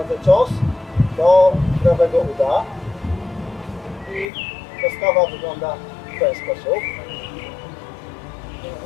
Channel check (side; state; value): right; drops out; at 4.2 s